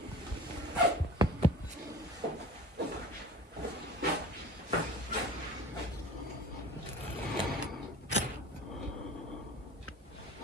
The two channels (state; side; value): normal; both; correlation 0.40